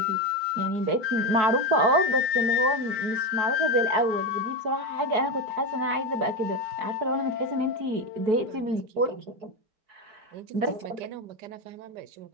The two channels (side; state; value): left; late; 4.6 ms